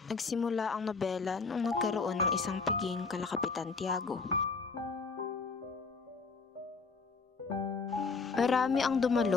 Nagsimula ang nobela nung nagkaroon ng isang piging kalakapitan Tiago. Marami ang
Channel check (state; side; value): quieter; right; 4.6 dB